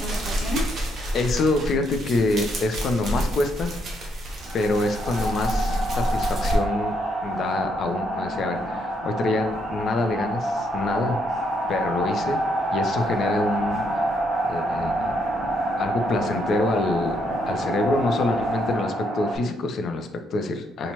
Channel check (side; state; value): both; normal; correlation 0.75